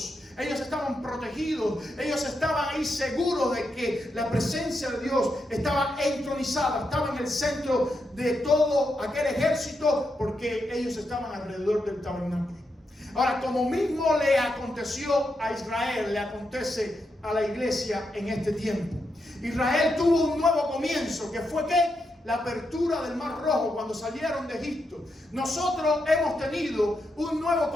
Ellos estaban protegidos, ellos estaban ahí seguros de que la presencia de Dios estaba entronizada, estaba en el centro de todo aquel ejército, porque ellos estaban alrededor del tabernáculo. Ahora, como mismo le aconteció a Israel, le acontece a la iglesia en este tiempo. Israel tuvo un nuevo comienzo, que fue ¿qué? La apertura del Mar Rojo cuando salieron de Egipto. Nosotros hemos tenido un nuevo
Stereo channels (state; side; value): normal; both; correlation 0.84